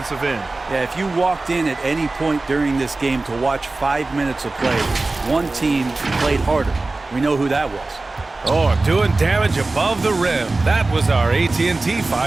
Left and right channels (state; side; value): quieter; left; 3.3 dB